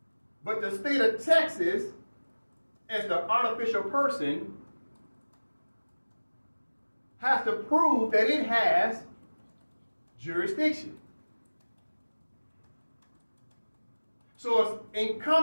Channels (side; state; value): both; inverted; correlation -1.00